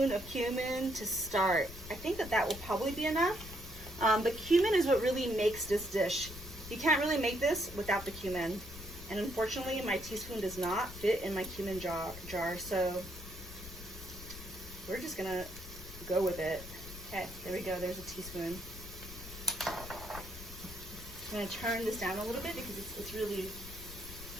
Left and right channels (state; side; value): noise; left; rumble, 14 dB below the sound